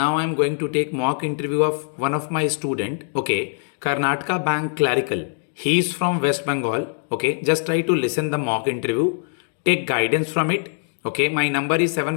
I'm going to take mock interview of one of my student. Okay, Karnataka Bank clerical. He is from West Bengal. Okay, just try to listen the mock interview. Take guidance from it. Okay, my number is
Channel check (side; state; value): right; silent; 61 dB below the other